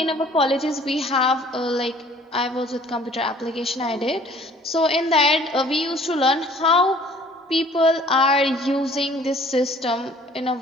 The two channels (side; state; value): both; normal; correlation 0.54